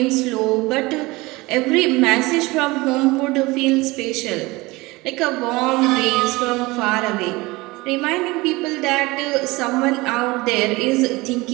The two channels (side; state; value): left; quieter; 22.2 dB